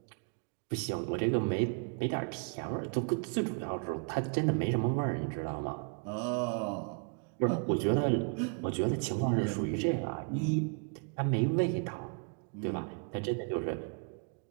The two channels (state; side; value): quieter; left; 39.6 dB